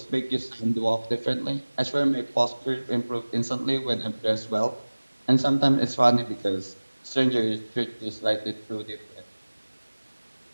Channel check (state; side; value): inverted; both; correlation -1.00